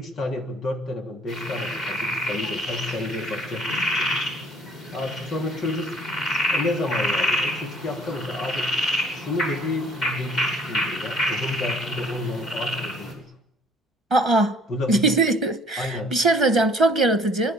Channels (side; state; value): both; normal; correlation 0.56